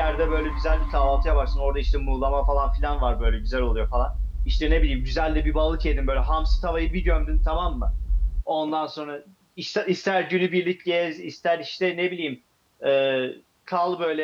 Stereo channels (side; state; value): both; identical; correlation 1.00